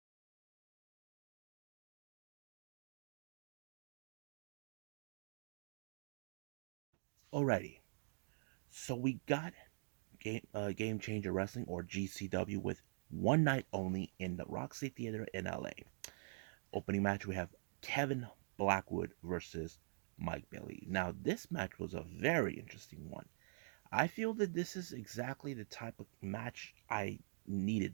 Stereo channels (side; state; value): left; silent; digital silence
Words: Alrighty, so we got Game Changer Wrestling, or GCW, with One Night Only in the Roxy Theatre in LA. Opening match, we have Kevin Blackwood versus Mike Bailey. Now, this match was a very interesting one. I feel that this is exactly the type of match I